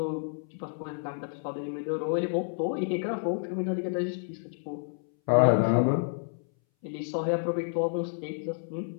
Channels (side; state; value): right; silent; 58 dB below the other